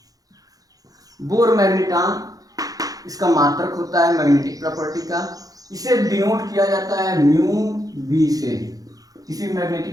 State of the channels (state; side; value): late; left; 0.17 ms